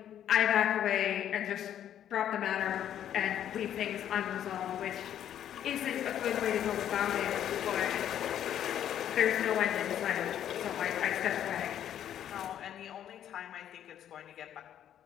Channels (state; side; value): quieter; right; 10.4 dB